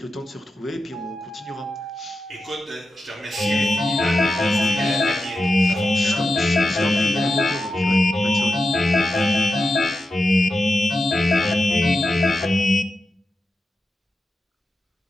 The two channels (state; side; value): normal; both; correlation 0.91